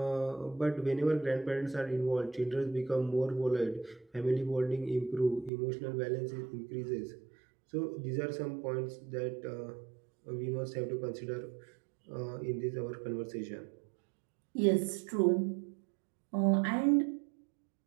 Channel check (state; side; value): drops out; left; at 5.5 s